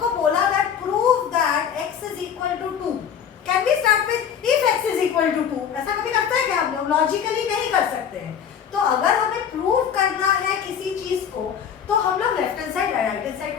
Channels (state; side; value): quieter; right; 8.1 dB